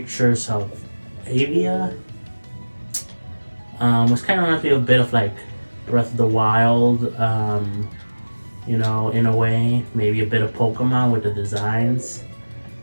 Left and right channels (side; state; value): both; inverted; correlation -1.00